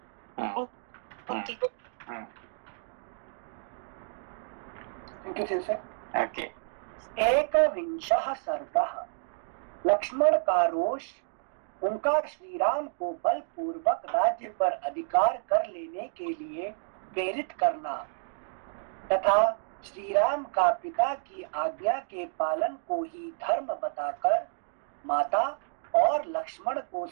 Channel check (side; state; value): left; silent; digital silence